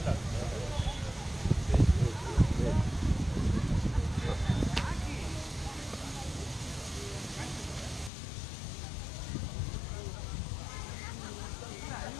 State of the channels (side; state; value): right; drops out; at 8.1 s